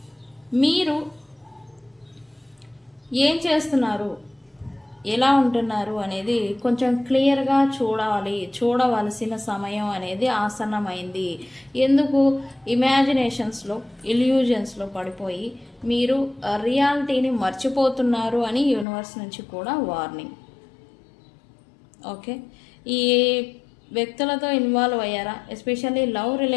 మీరు ఏం చేస్తున్నారు, ఎలా ఉంటున్నారు అనేది కొంచెం క్లియర్గా చూడవలసిన సమయం అనేది ఆసన్నమైంది. ఎందుకు ఇమాజినేషన్స్లో, ఇల్యూజన్స్లో పడిపోయి మీరు రియాలిటీని మర్చిపోతున్నారు అని యూనివర్స్ నుంచి కూడా వార్నింగ్. ఓకే, ఈ వ్యక్తులతో ఇన్వాల్వ్ అయ్యారా, ఎస్పెషల్లీ లవ్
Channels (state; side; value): drops out; right; at 18.9 s